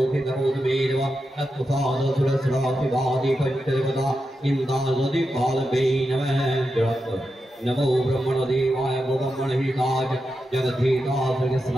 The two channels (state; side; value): normal; both; correlation 0.88